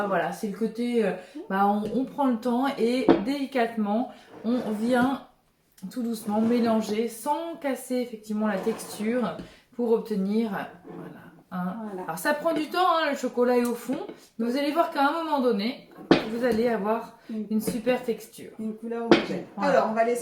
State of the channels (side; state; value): both; identical; correlation 1.00